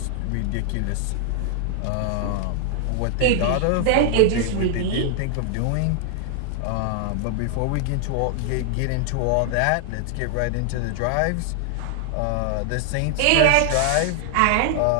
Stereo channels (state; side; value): different; both; correlation 0.00